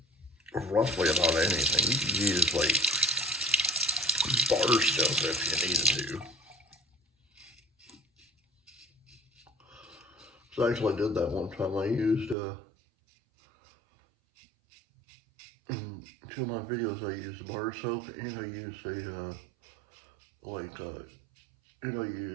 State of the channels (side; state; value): left; drops out; at 12.4 s